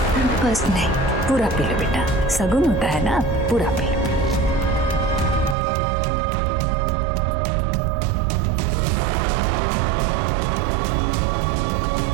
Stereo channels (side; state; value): left; drops out; at 5.6 s